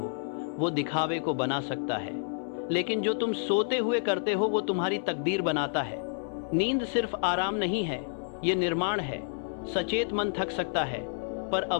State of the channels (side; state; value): right; silent; 58 dB below the other